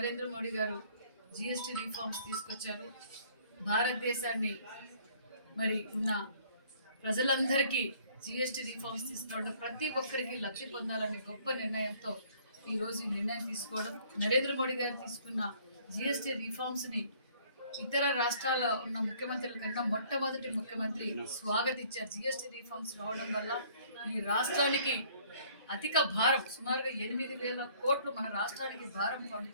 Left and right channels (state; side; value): inverted; both; correlation -0.58